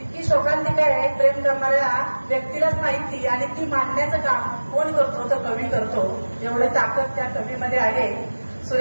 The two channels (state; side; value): inverted; both; correlation -1.00